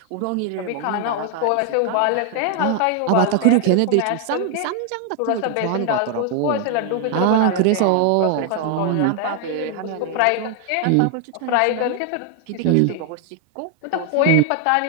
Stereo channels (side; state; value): both; different; correlation 0.00